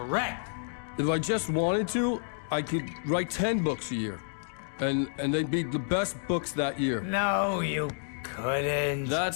If I just wanted to, I could write 10 books a year. And they'd be the best books that year. No, you couldn't.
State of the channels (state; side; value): silent; right; digital silence